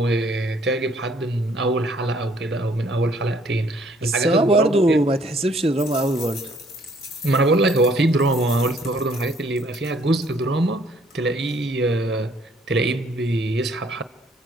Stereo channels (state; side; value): normal; both; correlation 0.63